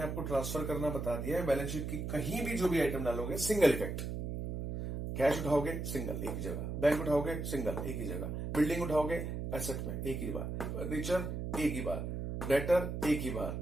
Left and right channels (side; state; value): right; noise; hum, 4 dB below the sound